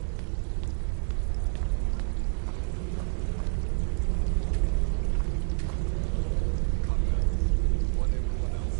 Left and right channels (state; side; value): silent; left; digital silence